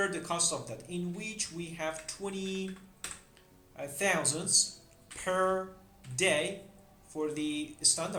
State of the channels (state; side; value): identical; both; correlation 1.00